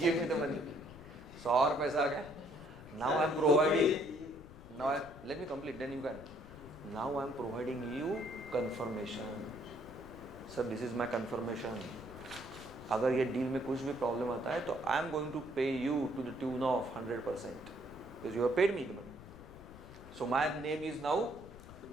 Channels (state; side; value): noise; left; rumble, 17 dB below the sound